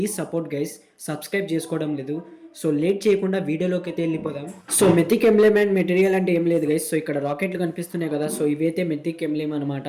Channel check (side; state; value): both; identical; correlation 1.00